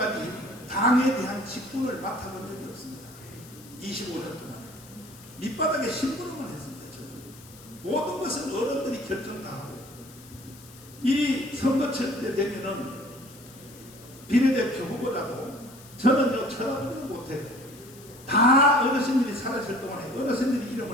당에 대한 직분을 맡아본 적이 없습니다. 25년 동안에. 밑바닥에 심부름을 했습니다. 저는. 모든 것은 어른들이 결정 다 하고, 이 선거철 때 되면은 비례대표 후보자도 저는 쳐다보지도 못해요. 다 어르신들이 살아있을 동안에 어르신들이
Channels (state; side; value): noise; left; hiss, 21 dB below the sound